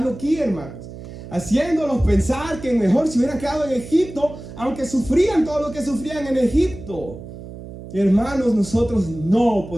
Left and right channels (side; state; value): right; noise; hum, 13 dB below the sound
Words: aquí, hermanos. Haciéndolos pensar que mejor se hubieran quedado en Egipto, aunque sufrían todo lo que sufrían en Egipto. Y hermanos, nosotros no